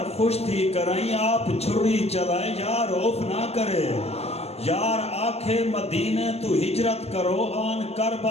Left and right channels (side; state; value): right; late; 0.30 ms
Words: खुश थी कराई आप छुरी चलाए यार उफ ना करे यार आखे मदीने तू हिजरत करो आन